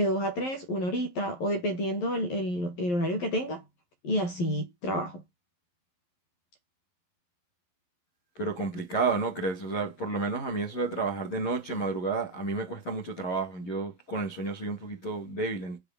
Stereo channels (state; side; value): late; right; 11 ms